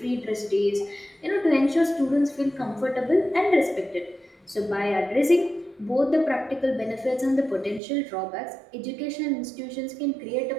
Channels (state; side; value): drops out; left; at 7.8 s